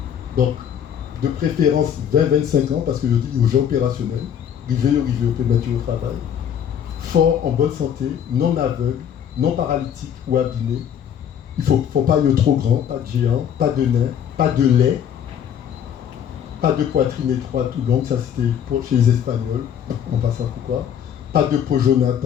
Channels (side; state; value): right; quieter; 8.9 dB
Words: Donc, de préférence 20-25 ans, parce que je dis aux gens opérationnels, river au peut mettre au travail, fort, en bonne santé, non aveugle, non paralytique ou abîmé. Il ne faut pas être trop grand, pas de géant, pas de nain, pas de lait, pas de poitrine étroite ou longue, ça c'était chez les Espagnols, on passe à pourquoi. Pas de peau jaunâtre